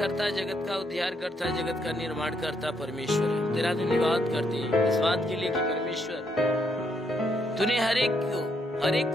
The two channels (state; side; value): normal; both; correlation 0.74